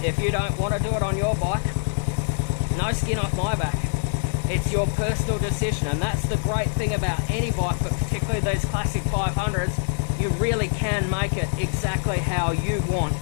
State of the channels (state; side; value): silent; right; digital silence